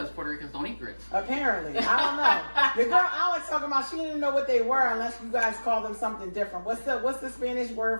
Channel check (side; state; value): both; inverted; correlation -1.00